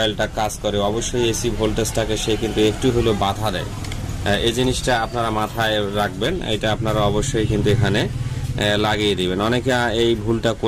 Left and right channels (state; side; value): identical; both; correlation 1.00